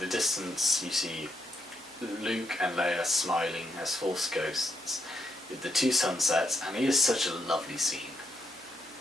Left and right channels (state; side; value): noise; right; hum, 29 dB below the sound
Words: distance you see Luke and Leia smiling as Force ghosts with the 2 sunsets, and it is such a lovely scene.